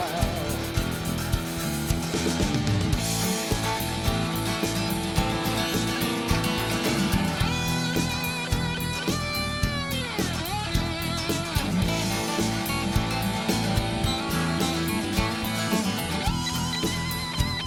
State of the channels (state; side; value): identical; both; correlation 1.00